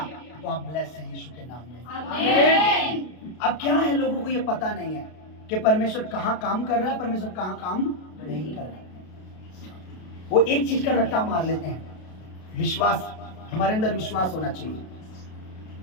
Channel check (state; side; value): late; right; 32 ms